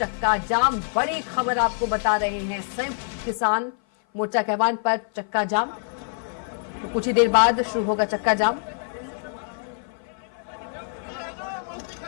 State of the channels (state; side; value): silent; right; 56 dB below the other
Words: जाम। बड़ी खबर आपको बता रहे हैं, संयुक्त किसान मोर्चा के आह्वान पर चक्का जाम। तो कुछ ही देर बाद शुरू होगा चक्का जाम।